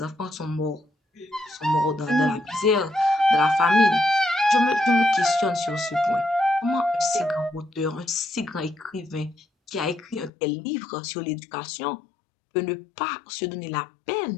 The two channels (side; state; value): right; drops out; at 10.3 s